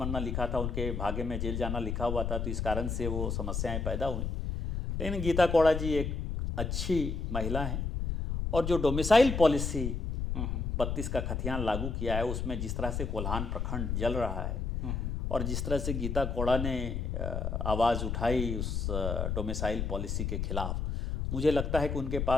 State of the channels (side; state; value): left; noise; rumble, 2 dB below the sound